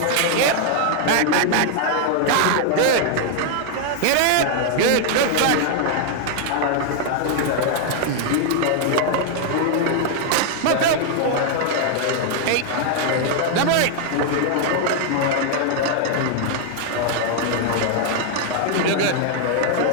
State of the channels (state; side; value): different; both; correlation 0.00